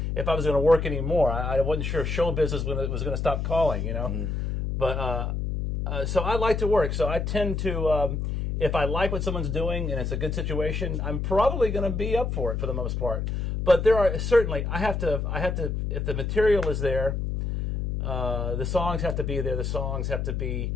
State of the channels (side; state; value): left; noise; hum, 1 dB below the sound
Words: if I was going to work anymore. I wasn't sure if show business was going to stop calling. But so I like to work. So I tend to, if I like what someone's doing and it's a good situation, I'm probably going to be up for it for the most part. But there are certainly I have to if the material is there, the songs have to be there. The songs have to be